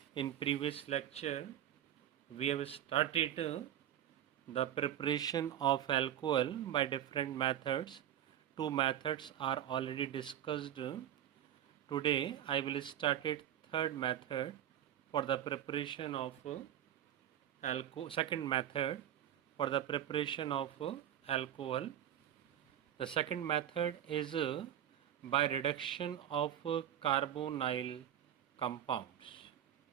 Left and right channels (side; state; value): left; quieter; 10.9 dB